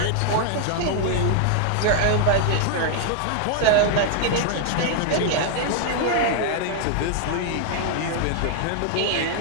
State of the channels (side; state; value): both; different; correlation 0.00